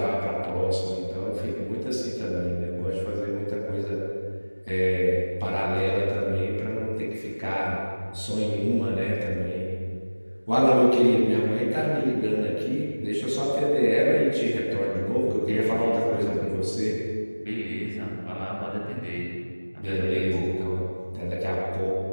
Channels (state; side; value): inverted; both; correlation -1.00